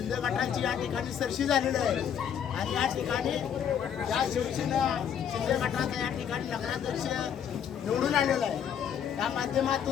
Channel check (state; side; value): quieter; right; 8.6 dB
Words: गटाची या ठिकाणी सरशी झालेली आहे आणि या ठिकाणी या शिवसेना शिंदे गटाचा या ठिकाणी नगराध्यक्ष निवडून आलेला आहे। त्या